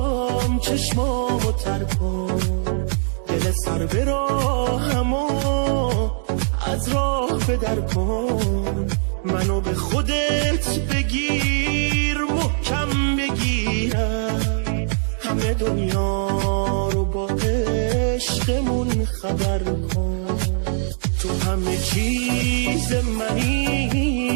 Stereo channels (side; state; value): left; silent; digital silence